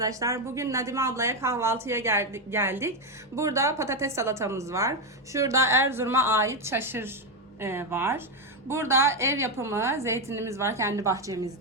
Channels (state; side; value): normal; both; correlation 0.07